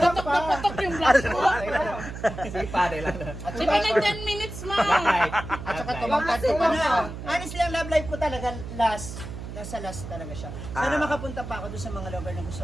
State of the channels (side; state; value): right; noise; hum, 9 dB below the sound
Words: pa. Sige, pare lang. At Di saka, ba nag 10 minutes ma? at saka tumangkad ko pa na. Honestly, ang love life ko talaga nasa last talaga siya. Sana makapunta pa ako doon sa mga lugar na